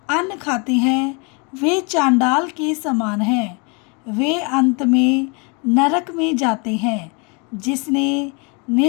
अन्न खाते हैं वे चांडाल के समान हैं, वे अंत में नरक में जाते हैं। जिसने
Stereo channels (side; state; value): right; quieter; 32.3 dB